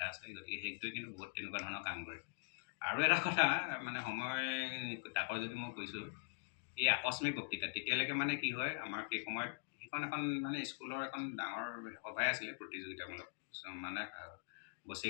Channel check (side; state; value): right; silent; digital silence